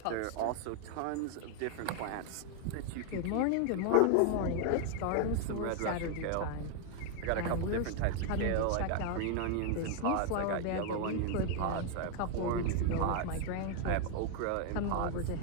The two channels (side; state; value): both; different; correlation 0.00